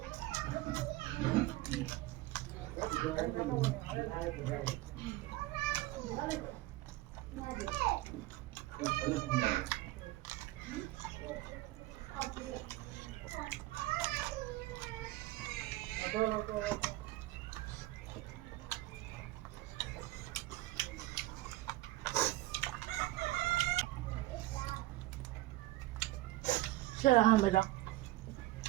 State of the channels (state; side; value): quieter; left; 17.9 dB